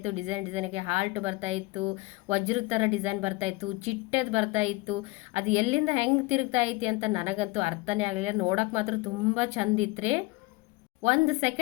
ಡಿಸೈನ್ಗೆ ಹಾಲ್ಟ್ ಬರ್ತಾ ಇತ್ತು, ವಜ್ರದ ಥರ ಡಿಸೈನ್ ಬರ್ತಾ ಇತ್ತು, ಚಿಟ್ಟದ್ ಬರ್ತಾ ಇತ್ತು. ಅದು ಎಲ್ಲಿಂದ ಹೆಂಗೆ ತಿರುಗ್ತಾ ಐತಿ ಅಂತ ನನಗಂತೂ ಅರ್ಥನೇ ಆಗಲಿಲ್ಲ. ನೋಡೋಕೆ ಮಾತ್ರ ತುಂಬ ಚಂದ ಇತ್ತು. 1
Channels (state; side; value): quieter; right; 22.2 dB